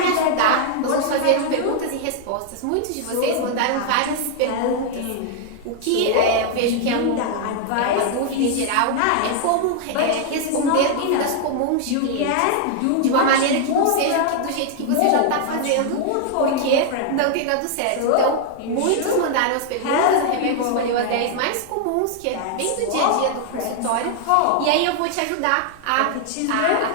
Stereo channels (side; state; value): both; different; correlation 0.00